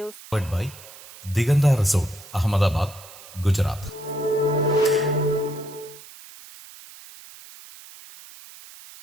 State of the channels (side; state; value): right; noise; hiss, 18 dB below the sound